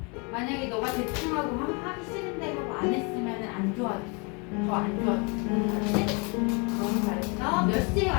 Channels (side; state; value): right; quieter; 32.5 dB